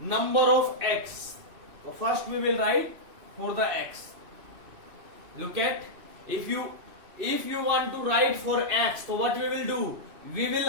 of x. So first we will write for the x. Look at, if you want to write for x, so what we will do? We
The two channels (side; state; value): left; late; 2.8 ms